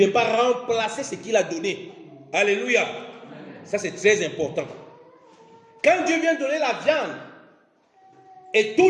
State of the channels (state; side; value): identical; both; correlation 1.00